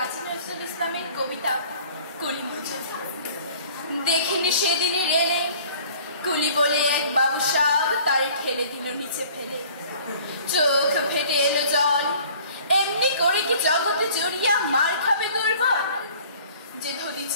নজরুল ইসলামের কবিতা কুলি মুজোঝা। দেখিনি সেদিনই রেলে কুলি বলে এক বাবু সাব তারে ঠেলে দিল নিচে ফেলে। চোখ ফেটে এলো জল, এমনি করে কি জগতে জড়িয়া মার খাবে দুর্বল? যে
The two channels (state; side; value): inverted; both; correlation -0.50